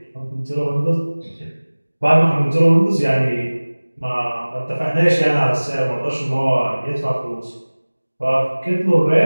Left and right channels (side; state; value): both; inverted; correlation -1.00